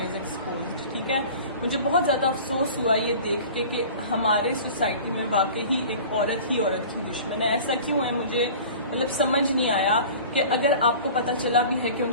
एक्सपोज्ड, ठीक है। मुझे बहुत ज़्यादा अफसोस हुआ ये देख के कि हमारे सोसाइटी में वाकई ही एक औरत ही औरत की दुश्मन है। ऐसा क्यों है मुझे मतलब समझ नहीं आया कि अगर आपको पता चला भी है कि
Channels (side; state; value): both; inverted; correlation -0.41